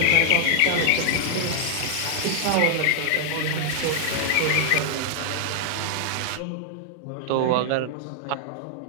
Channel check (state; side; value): different; both; correlation -0.01